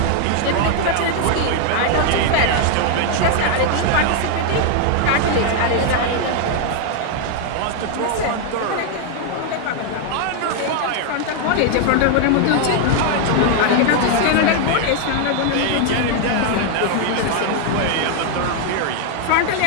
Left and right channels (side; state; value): both; different; correlation 0.00